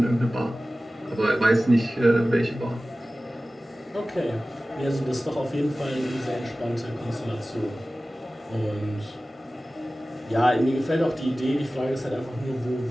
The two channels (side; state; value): both; normal; correlation 0.96